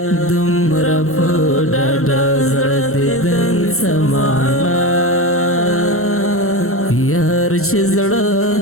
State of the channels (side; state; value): right; late; 0.63 ms